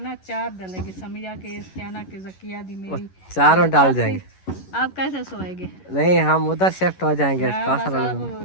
चार डलेगी, समिया के इस्तियाना के जकिया दी मेरी चारों डाल जाएंगे। आप कैसे सोएंगे? नहीं हम उधर शिफ्ट हो जाएंगे। हाँ, बस आप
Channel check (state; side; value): late; right; 11 ms